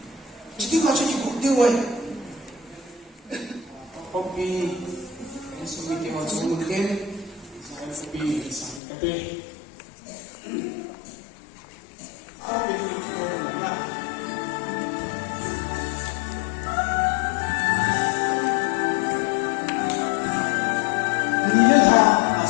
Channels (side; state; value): right; drops out; at 8.8 s